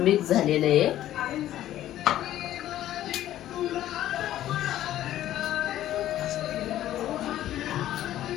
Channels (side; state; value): right; quieter; 13.0 dB